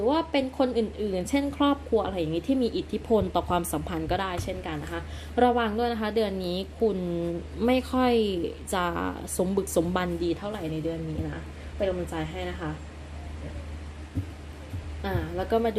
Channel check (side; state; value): both; identical; correlation 1.00